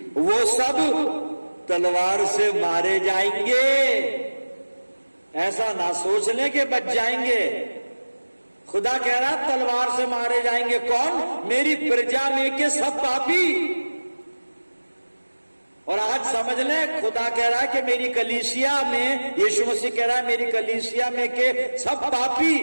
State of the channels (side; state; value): both; inverted; correlation -1.00